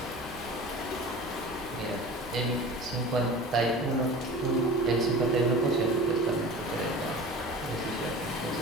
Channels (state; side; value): normal; both; correlation 0.38